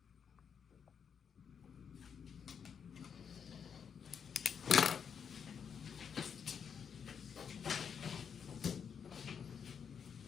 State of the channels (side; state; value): right; quieter; 7.1 dB